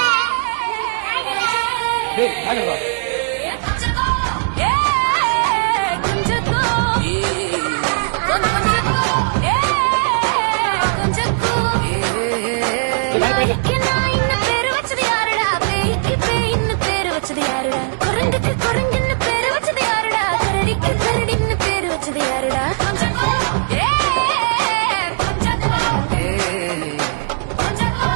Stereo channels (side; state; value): left; silent; digital silence